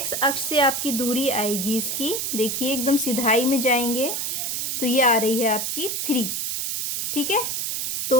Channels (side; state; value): right; noise; hiss, 1 dB below the sound